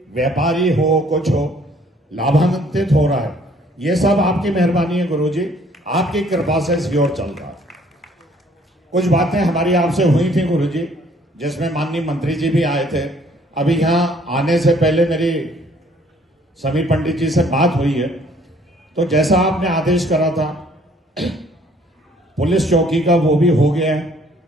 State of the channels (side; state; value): both; normal; correlation 0.60